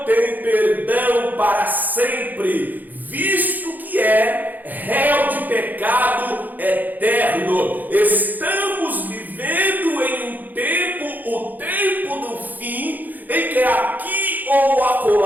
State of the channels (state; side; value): late; left; 0.084 ms